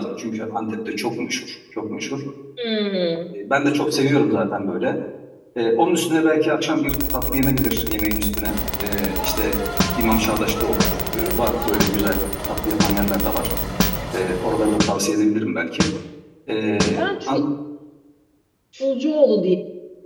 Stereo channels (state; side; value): identical; both; correlation 1.00